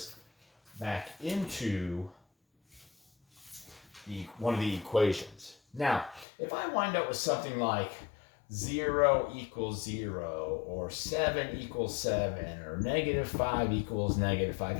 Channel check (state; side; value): drops out; right; at 6.2 s